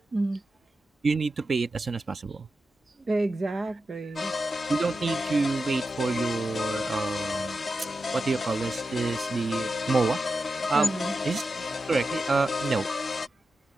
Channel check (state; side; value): normal; both; correlation 0.90